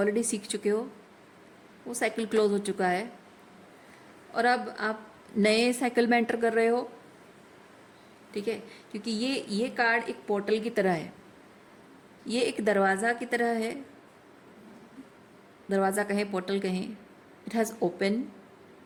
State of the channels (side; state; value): both; identical; correlation 1.00